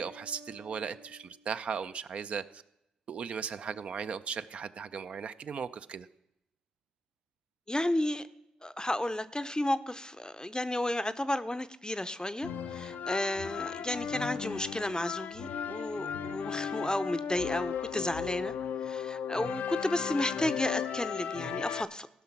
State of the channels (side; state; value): both; normal; correlation 0.81